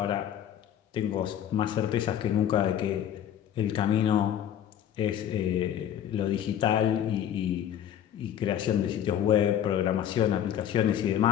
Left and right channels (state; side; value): quieter; right; 10.2 dB